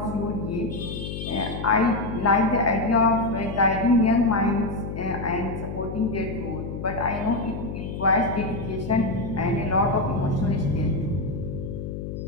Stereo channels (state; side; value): noise; left; hum, 6 dB below the sound